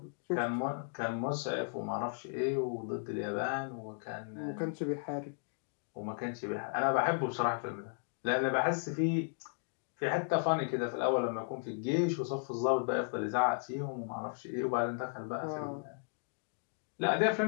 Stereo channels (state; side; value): silent; right; digital silence